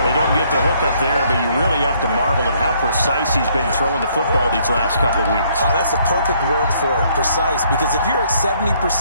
They don't get the hook up there, but you really have to marvel at how precise he's been throwing the football these last couple weeks. Oh, that's the perfect word for it, precise, because if you're at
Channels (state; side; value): inverted; both; correlation -0.66